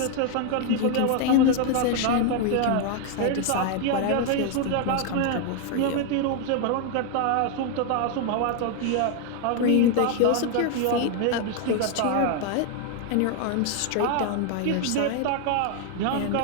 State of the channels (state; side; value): different; both; correlation 0.01